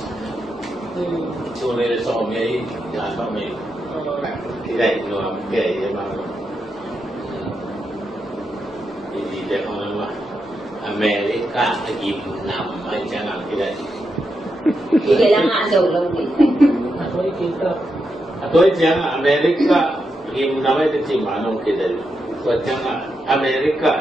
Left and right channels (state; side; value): normal; both; correlation 0.85